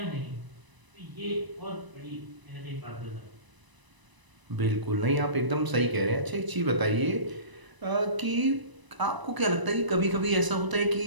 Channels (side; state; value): left; late; 1.0 ms